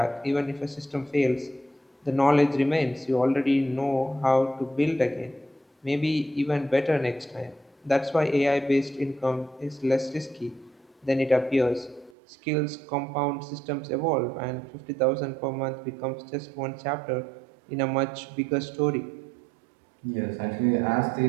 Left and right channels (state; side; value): drops out; left; at 12.1 s